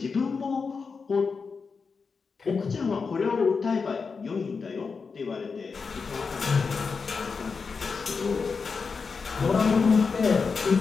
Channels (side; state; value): right; quieter; 5.1 dB